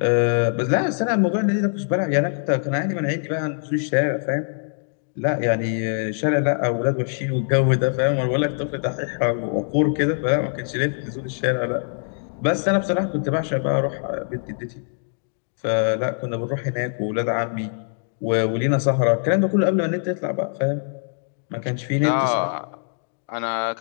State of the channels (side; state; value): right; silent; digital silence